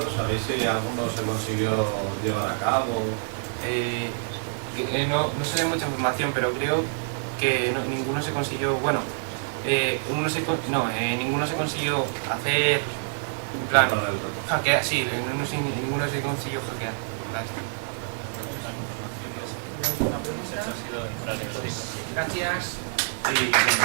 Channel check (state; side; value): silent; left; digital silence